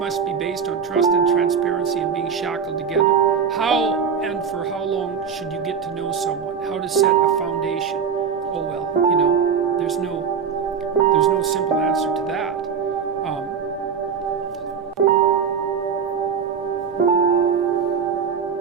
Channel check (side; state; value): left; quieter; 6.6 dB